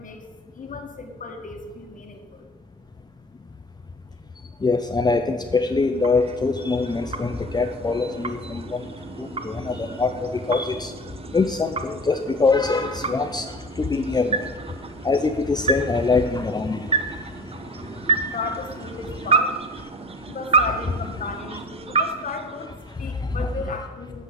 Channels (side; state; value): both; normal; correlation 0.41